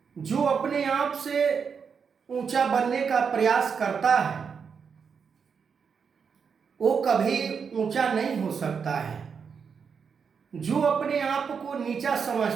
जो अपने आप से ऊंचा बनने का प्रयास करता है वो कभी ऊंचा नहीं हो सकता है। जो अपने आप को नीचा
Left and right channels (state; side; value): quieter; left; 6.2 dB